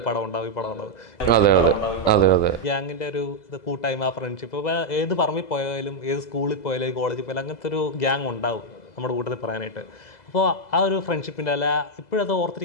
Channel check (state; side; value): late; right; 2.0 ms